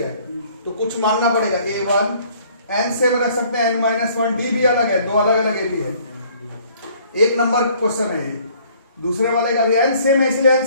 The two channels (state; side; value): inverted; both; correlation -0.59